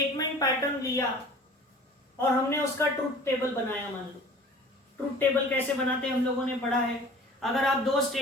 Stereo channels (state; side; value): normal; both; correlation 0.45